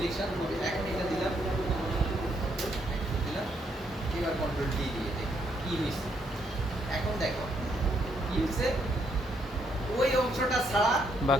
হবে। এখন এটা দিলাম, এবার কন্ট্রোল ডি দিয়ে দেখি কি হয়েছে। এখন দেখো কি হয়েছে, ওই অংশটা ছাড়া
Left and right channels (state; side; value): normal; both; correlation 0.74